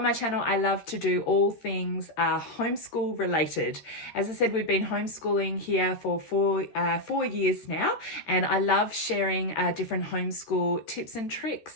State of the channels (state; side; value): late; right; 13 ms